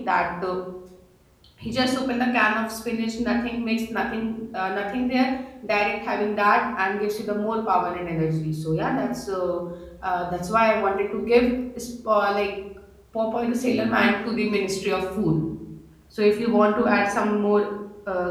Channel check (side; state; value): both; identical; correlation 1.00